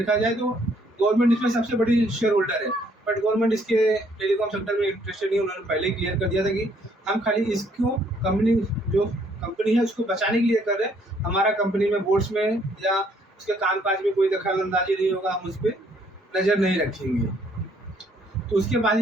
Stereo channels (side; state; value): both; normal; correlation 0.66